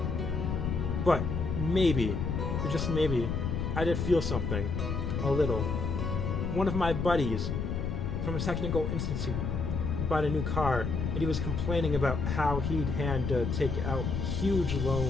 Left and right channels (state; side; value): noise; left; rumble, 2 dB below the sound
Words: But maybe, or just maybe, I did feel something. A little. One of my buddies from a technical institute bought a new car, and he was complaining about how he'd had to take out huge